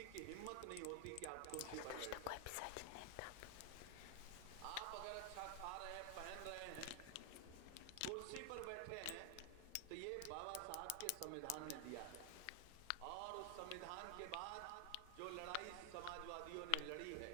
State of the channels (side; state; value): both; different; correlation 0.00